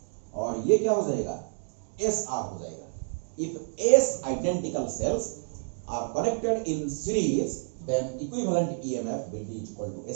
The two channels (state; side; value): silent; left; digital silence